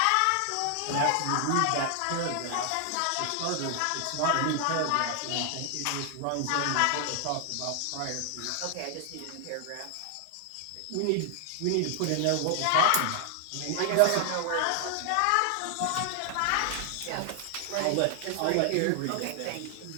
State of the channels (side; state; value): both; different; correlation 0.00